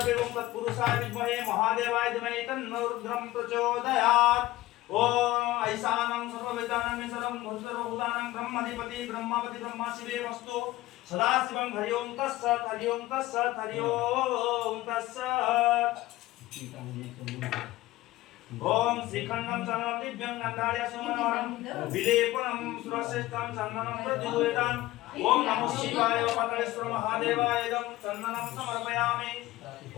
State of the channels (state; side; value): quieter; right; 17.4 dB